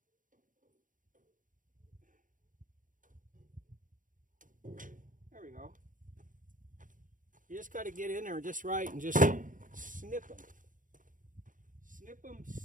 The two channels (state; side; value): late; left; 0.38 ms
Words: There we go. You just got to get in there just right and just snip them. Snip them,